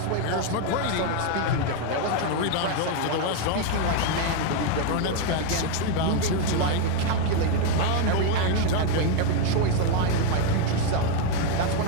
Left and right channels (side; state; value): both; different; correlation 0.01